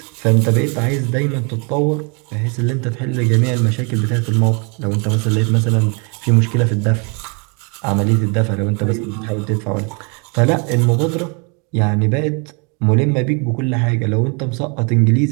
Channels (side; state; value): left; quieter; 34.5 dB